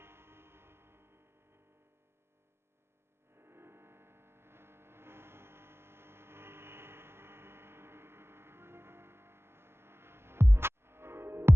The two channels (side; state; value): left; late; 0.12 ms